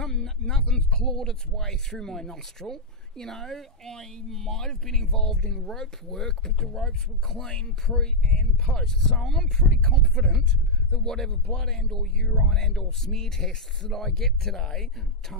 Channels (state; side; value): normal; both; correlation -0.03